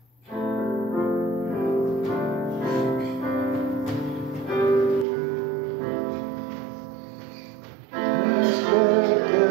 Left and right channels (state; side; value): drops out; left; at 5.1 s